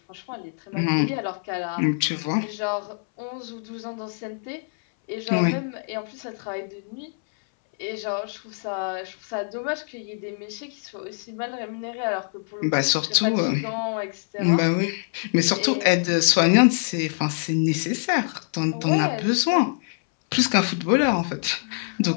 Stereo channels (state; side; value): silent; right; 62 dB below the other